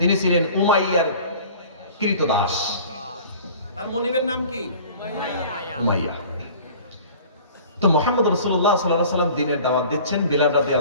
ছিলেন উমাইয়ার কৃতদাস। তার মনিবের নাম কি? উমাইয়া। তো মুহাম্মদ রাসূলুল্লাহ সাল্লাল্লাহু আলাইহি ওয়াসাল্লাম দ্বীনের দাওয়াত দিচ্ছেন। বিলাল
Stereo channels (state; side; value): inverted; both; correlation -0.45